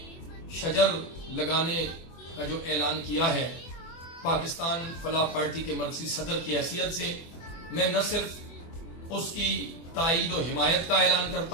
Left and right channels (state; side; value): late; right; 24 ms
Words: شجر لگانے کا جو اعلان کیا ہے، پاکستان فلاح پارٹی کے مرکزی صدر کی حیثیت سے میں نہ صرف اس کی تائید و حمایت کا اعلان